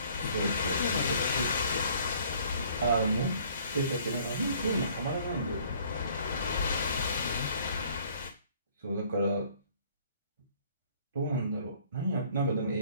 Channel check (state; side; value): inverted; both; correlation -0.57